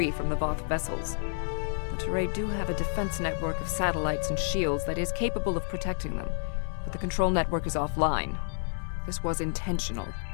from the Voth vessels. The Teray do have a defense network of satellites and shields that is capable of protecting them, but the control network is offline. This was intentional.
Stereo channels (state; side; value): silent; right; 58 dB below the other